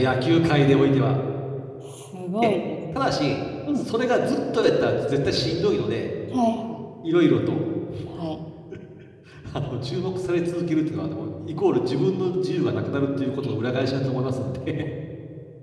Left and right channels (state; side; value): identical; both; correlation 1.00